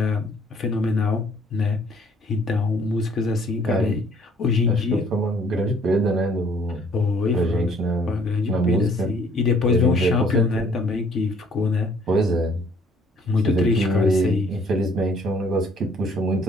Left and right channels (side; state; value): both; normal; correlation 0.60